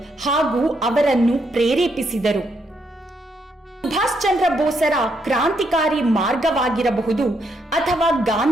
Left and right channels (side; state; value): both; normal; correlation 0.76